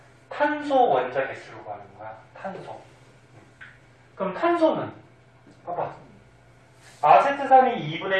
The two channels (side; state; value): both; identical; correlation 1.00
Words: 탄소 원자 개수를 구하는 거야. 탄소. 그럼 탄소는 봐봐. 아세트산이